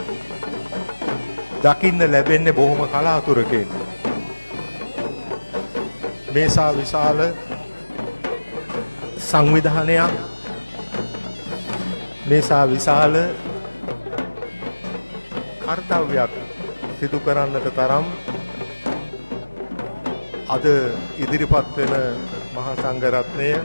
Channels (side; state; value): both; inverted; correlation -1.00